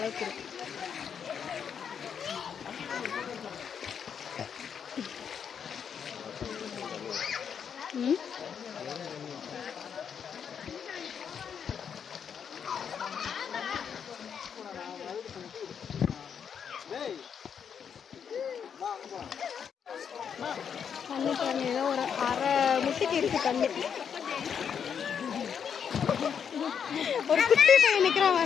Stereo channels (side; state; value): right; quieter; 7.4 dB